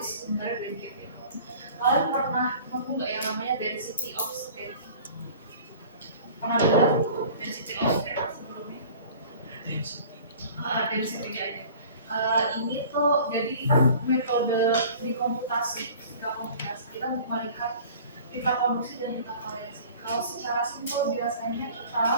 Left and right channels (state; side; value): inverted; both; correlation -0.45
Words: sih sebenarnya band gap itu? Kalian pernah nemu nggak yang namanya density of state? Pernah dengar density of state sebelumnya? Density aja. Ini tuh jadi metode di komputasi, kita melihat pita konduksi dan pita valensi. Kalau secara simpel biasanya kita